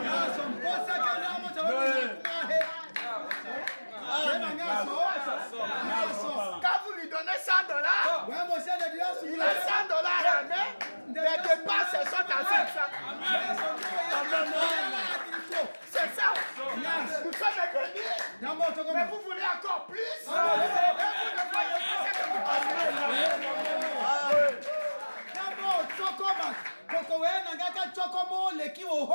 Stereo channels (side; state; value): both; inverted; correlation -1.00